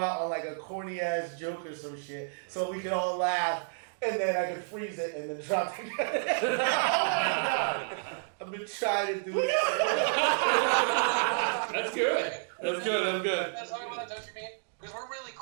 on like a corny ass joke or some shit, so we can all laugh, and then I can freeze it and then drop the credit. Oh my god! I've been trying to do it. That's good. That's good. That's how we want to, don't you mean? Because we're really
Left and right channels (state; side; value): silent; left; digital silence